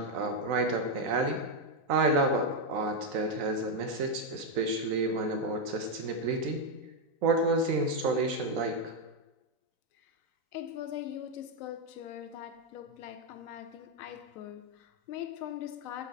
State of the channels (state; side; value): late; left; 3.9 ms